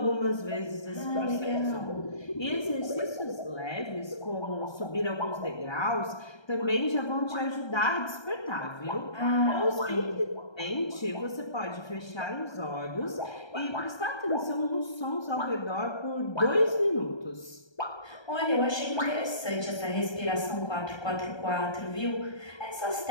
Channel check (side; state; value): right; late; 1.3 ms